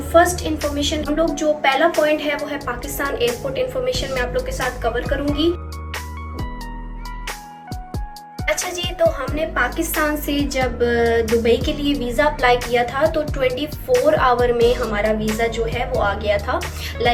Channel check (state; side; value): identical; both; correlation 1.00